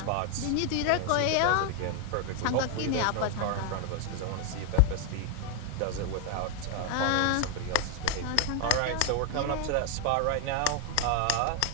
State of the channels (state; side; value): different; both; correlation 0.01